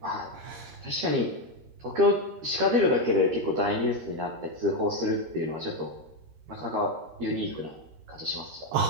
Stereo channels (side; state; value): left; late; 13 ms